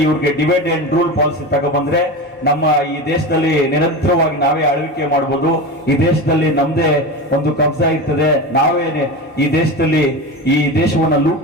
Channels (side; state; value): both; normal; correlation 0.25